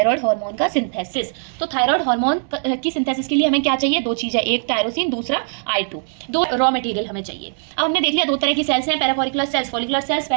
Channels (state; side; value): silent; left; 65 dB below the other